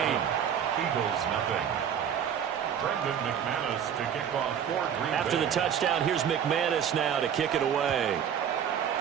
Eagles nothing. Brendan McManus to kick off for Green Bay. After the touchdown, here's McManus now to kick it away.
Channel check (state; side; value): quieter; left; 8.6 dB